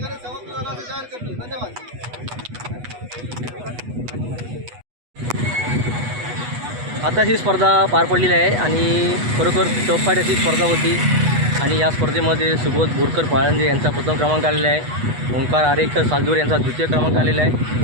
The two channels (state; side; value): late; left; 8.2 ms